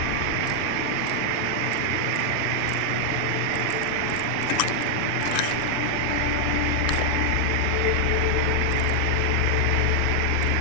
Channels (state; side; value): different; both; correlation 0.00